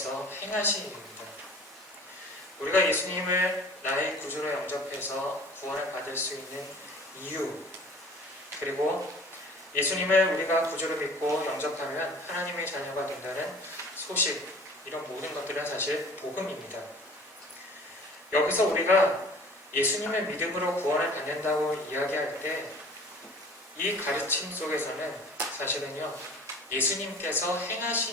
행하신 일입니다. 우리가 예수님을 나의 구주로 영접해서 구원을 받을 수 있는 이유, 그리고 예수님을 우리가 구주로 믿고 영접하면 하나님의 자녀가 된다는 소식, 이런 모든 것들은 사실 복음입니다. 여기서 우리가 예수님의 믿음으로 구원을 받는다고 이야기할 때 이 가르침 속에서는 사실은요, 예수님께서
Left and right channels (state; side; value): normal; both; correlation 0.46